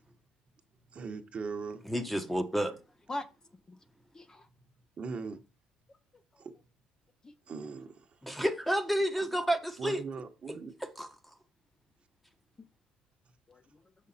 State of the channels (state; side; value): normal; both; correlation 0.91